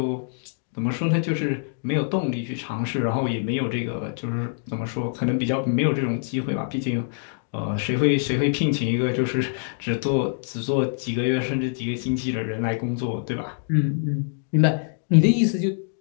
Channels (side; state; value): right; silent; digital silence